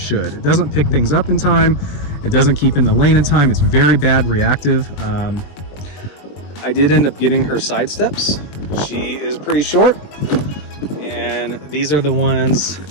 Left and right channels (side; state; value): right; late; 21 ms